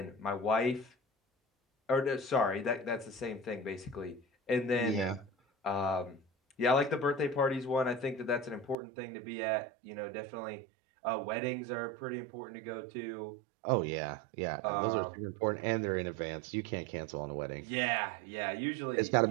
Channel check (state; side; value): drops out; left; at 8.8 s